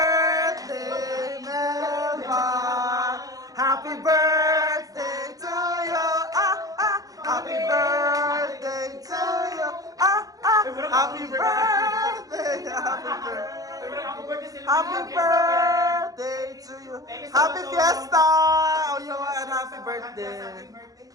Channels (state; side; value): late; left; 0.17 ms